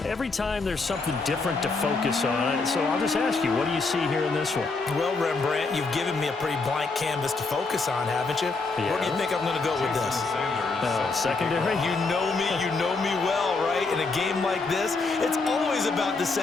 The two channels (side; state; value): right; quieter; 3.9 dB